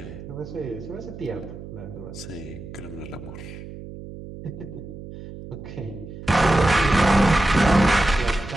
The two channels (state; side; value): noise; right; hum, 13 dB below the sound